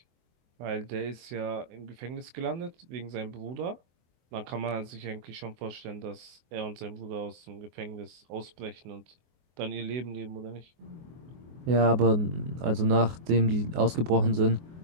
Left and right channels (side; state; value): left; late; 24 ms